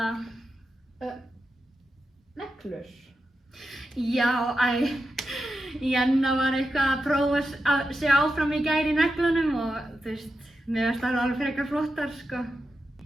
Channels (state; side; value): normal; both; correlation 0.89